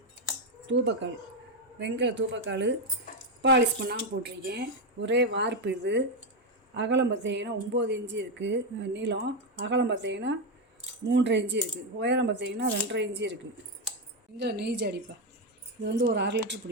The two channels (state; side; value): normal; both; correlation 0.06